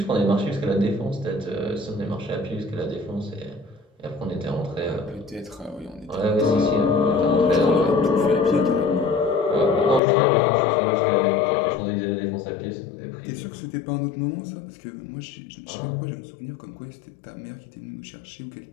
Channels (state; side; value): drops out; right; at 10.0 s